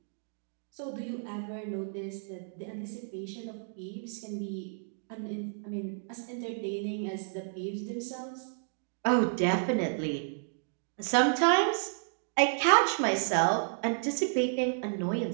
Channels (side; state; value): left; silent; digital silence